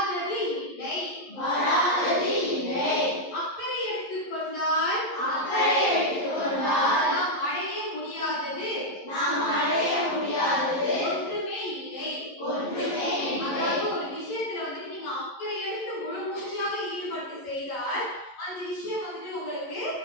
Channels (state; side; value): late; right; 11 ms